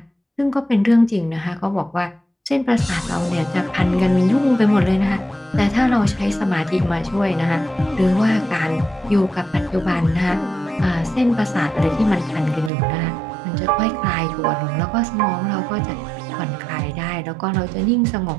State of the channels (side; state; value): left; drops out; at 12.7 s